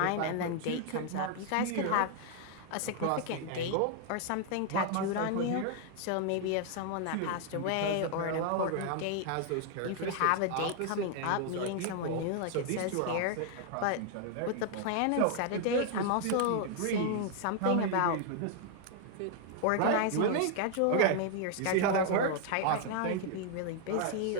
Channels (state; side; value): different; both; correlation 0.00